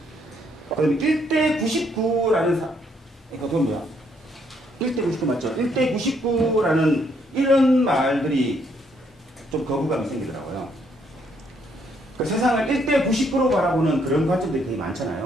그다음에 1대 99라는 이거 뭐야? 1대 99 맞죠? 1대 99라는 이런 말들이 좀 거부감이 생기더라고요. 그 세상을 1대 99로 바라보는 그런 관점들이 되게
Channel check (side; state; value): both; normal; correlation 0.71